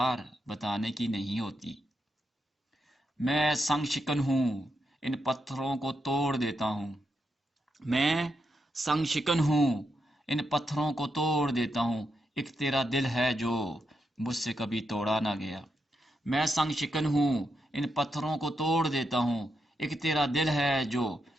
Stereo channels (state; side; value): normal; both; correlation 0.84